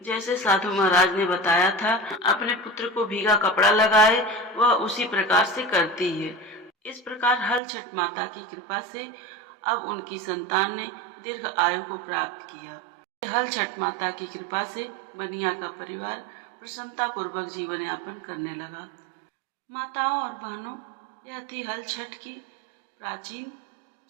जैसे साधु महाराज ने बताया था, अपने पुत्र को भीगा कपड़ा लगाए, वह उसी प्रकार से करती है। इस प्रकार हल छठ माता की कृपा से अब उनकी संतान ने दीर्घ आयु को प्राप्त किया। हल छठ माता की कृपा से बनिया का परिवार प्रसन्नता पूर्वक जीवन यापन करने लगा। माताओं और बहनों, यह थी हल छठ की प्राचीन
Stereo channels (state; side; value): drops out; left; at 7.6 s